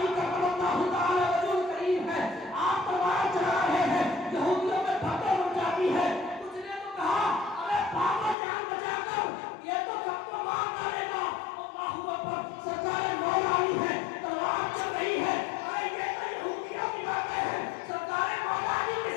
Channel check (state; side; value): drops out; right; at 8.3 s